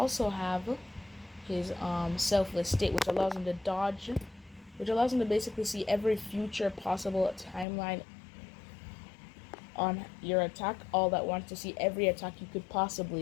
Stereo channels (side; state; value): right; drops out; at 7.7 s